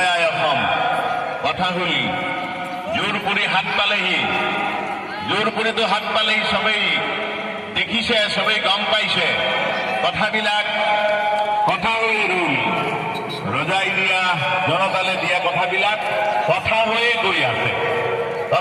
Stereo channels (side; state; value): both; identical; correlation 1.00